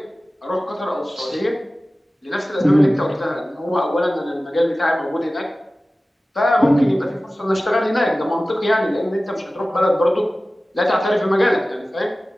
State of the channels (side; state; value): both; normal; correlation 0.96